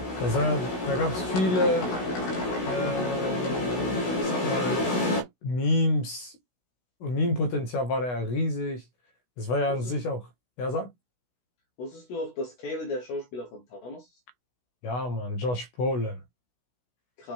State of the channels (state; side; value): late; right; 16 ms